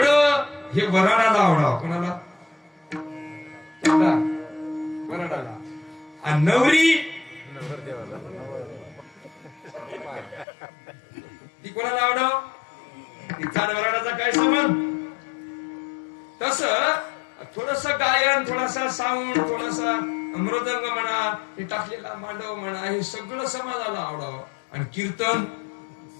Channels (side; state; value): right; drops out; at 10.5 s